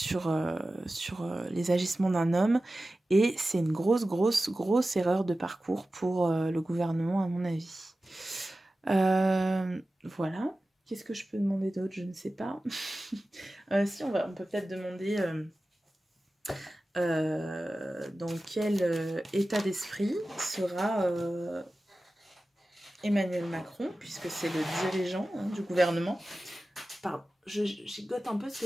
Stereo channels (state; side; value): normal; both; correlation 0.95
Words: les agissements d'un homme, et c'est une grosse erreur de parcours pour le gouvernement, à mon avis. Voilà. Qu'est-ce que je peux demander d'autre? Je ne sais pas. Si, on peut peut-être demander dans quel état d'esprit sera Emmanuel Macron, puisque c'est le dirigeant du gouvernement. Pardon, je gigote un peu parce